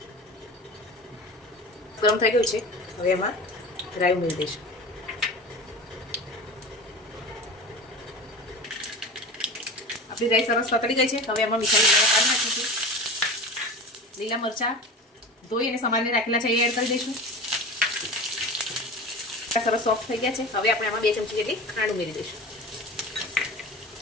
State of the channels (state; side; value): normal; both; correlation 0.32